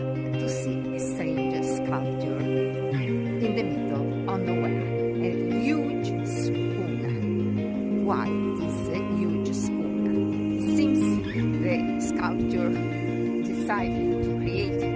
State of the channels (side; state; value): both; identical; correlation 1.00